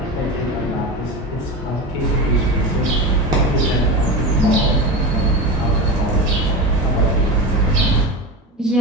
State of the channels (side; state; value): both; normal; correlation 0.24